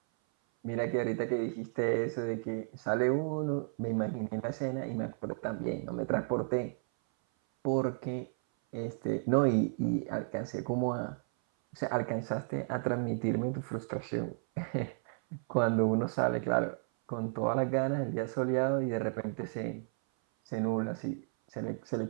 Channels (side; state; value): left; silent; 56 dB below the other